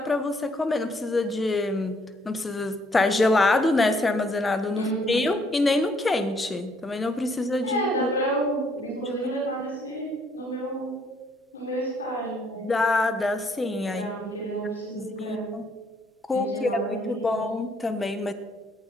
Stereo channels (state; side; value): normal; both; correlation 0.67